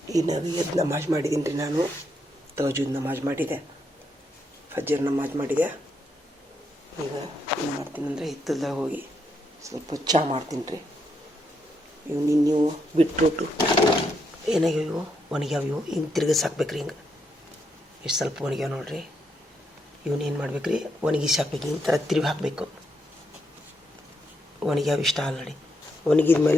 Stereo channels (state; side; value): normal; both; correlation 0.79